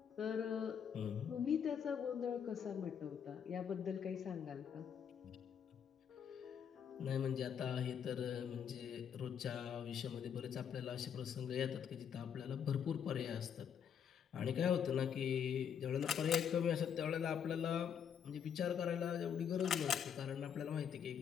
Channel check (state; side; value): quieter; right; 8.0 dB